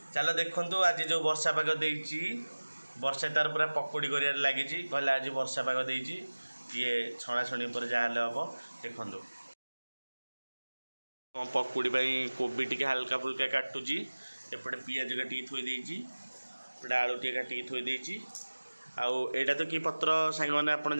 चलो देखंतु आज जो वर्षा पाग देइछि वर्षा तार पूरा पकोड़ी करियार लागिछि। कहला आज वर्षा पाग देइछि ये छणा छणी पर जाहले हबो। देखंतु पकुड़ी कोबी टी हल्का फुल्का काटुची एपटे पियाज काटिकी थोई देइछि एपटे आलू टी काटिकी थोई देइछि। आउ एटा तो कि पत्र सांग मैंने आपन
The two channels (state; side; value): inverted; both; correlation -1.00